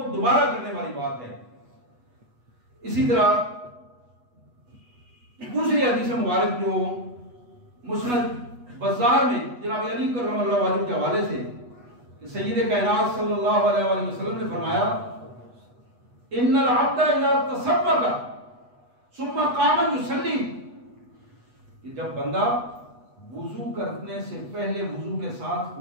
دوبارہ کرنے والی بات ہے۔ اسی طرح دوسری حدیث مبارک جو مسند بزار میں جناب علی کرم اللہ وجہ کے حوالے سے کہ سید کائنات صلی اللہ علیہ وآلہ وسلم نے فرمایا ان العبد اذا تصبک ثم قام یصلی، کہ جب بندہ وضو کرنے سے پہلے وضو کے ساتھ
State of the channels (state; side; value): late; left; 8.2 ms